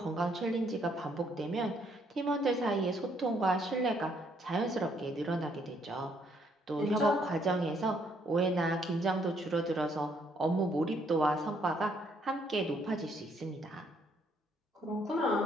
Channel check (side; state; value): both; normal; correlation 0.69